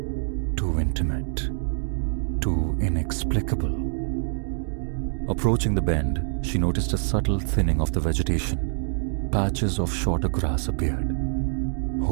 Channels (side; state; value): left; silent; digital silence